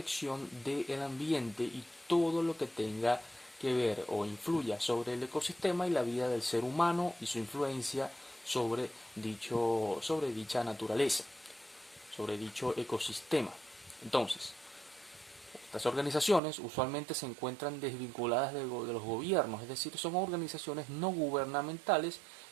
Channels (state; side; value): drops out; left; at 16.4 s